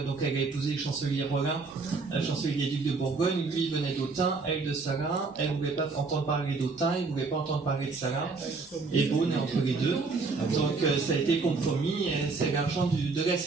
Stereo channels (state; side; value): quieter; left; 4.2 dB